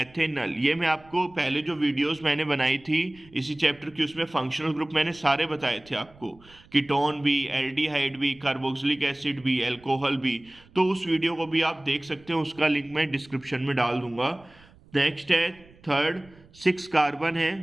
ये मैं आपको पहले जो वीडियोस मैंने बनाई थी इसी चैप्टर की, उसमें फंक्शनल ग्रुप मैंने सारे बताए थे आपको, कीटोन भी, एल्डिहाइड भी, कार्बोक्सिलिक एसिड भी, अल्कोहल भी। तो उस वीडियो को भी आप देख सकते हैं, उसका लिंक मैं डिस्क्रिप्शन में डाल दूंगा। नेक्स्ट है थर्ड, 6 कार्बन है,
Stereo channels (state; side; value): noise; right; rumble, 26 dB below the sound